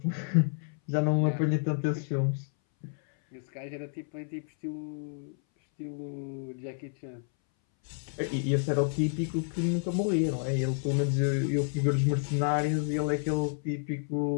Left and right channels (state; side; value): silent; right; 58 dB below the other